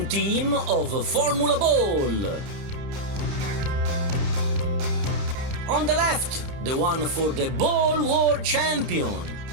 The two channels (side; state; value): left; late; 30 ms